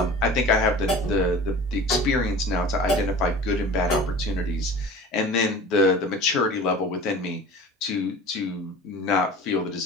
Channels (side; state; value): both; normal; correlation 0.39